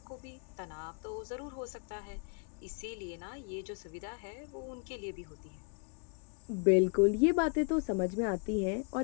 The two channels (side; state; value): right; quieter; 39.7 dB